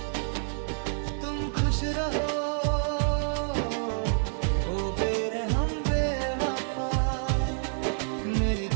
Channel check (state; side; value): silent; left; 59 dB below the other